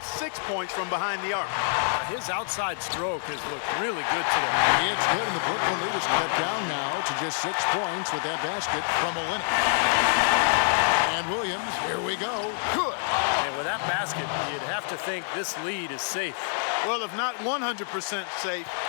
6 points from behind the arc. His outside stroke has looked really good today. It's good, and the Brooklyn lead is cut down now to just 6 points with that basket from Olenek. And Williams, here we go. Good. And with that basket, you'd have to think this lead is safe. Well, if not 100% safe,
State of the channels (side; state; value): right; silent; digital silence